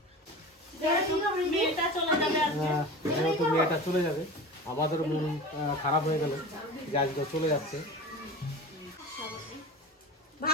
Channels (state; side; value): normal; both; correlation 0.33